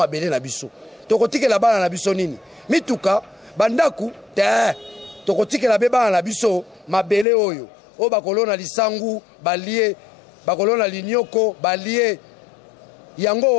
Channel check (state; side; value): drops out; right; at 7.2 s